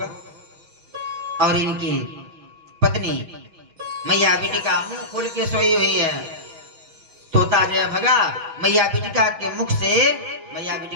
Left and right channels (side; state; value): left; late; 6.2 ms